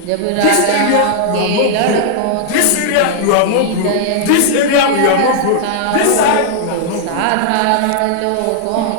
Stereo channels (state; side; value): different; both; correlation -0.01